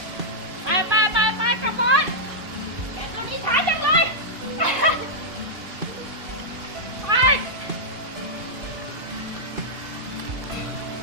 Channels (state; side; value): late; left; 2.5 ms